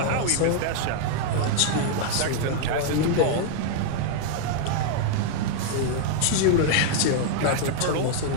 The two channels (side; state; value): both; different; correlation 0.00